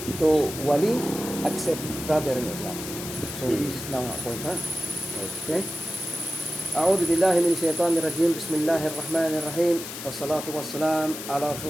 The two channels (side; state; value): left; noise; hiss, 9 dB below the sound